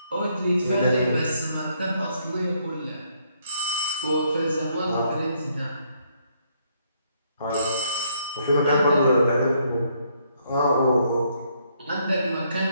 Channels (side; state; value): both; inverted; correlation -0.71